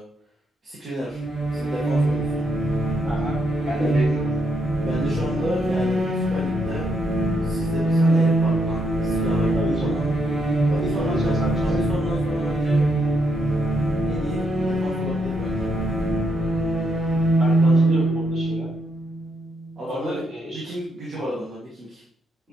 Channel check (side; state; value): both; normal; correlation 0.77